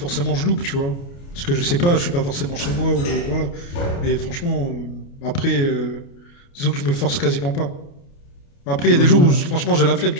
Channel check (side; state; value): right; late; 29 ms